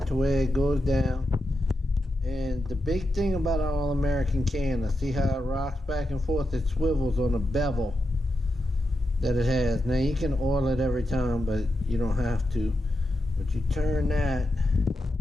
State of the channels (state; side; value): normal; both; correlation 0.87